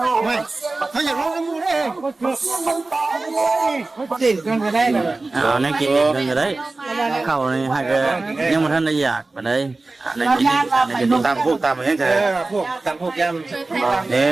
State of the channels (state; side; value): quieter; left; 3.3 dB